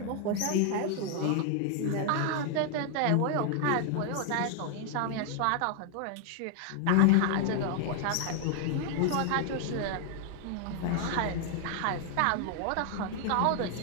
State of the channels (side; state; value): both; different; correlation 0.00